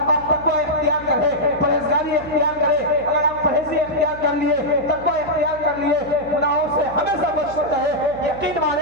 تقوی اختیار کریں, پرہیزگاری اختیار کریں. اگر آپ پرہیزی اختیار کر لیے, تقوی اختیار کر لیے, گناہوں سے ہمیشہ بچتے رہے, یقین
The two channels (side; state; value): right; noise; hum, 17 dB below the sound